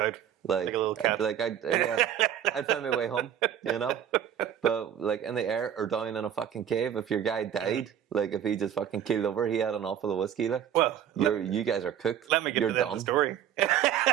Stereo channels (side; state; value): left; quieter; 9.8 dB